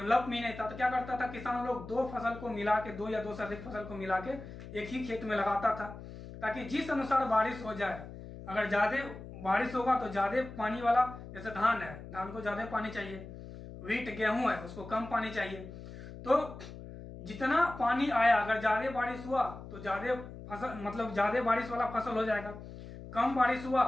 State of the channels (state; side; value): noise; left; hum, 13 dB below the sound